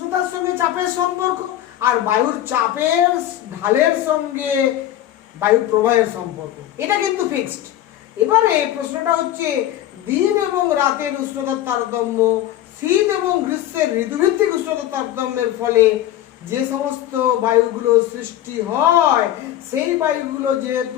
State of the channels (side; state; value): right; quieter; 12.7 dB